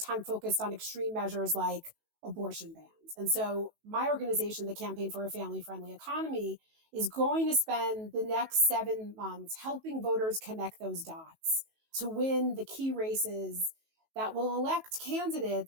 focused on extreme measures like abortion bans. And so my organization, the Campaign for a Family-Friendly Economy, is going to spend the next 7 months helping voters connect those dots to win the key races that will elect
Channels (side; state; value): left; late; 19 ms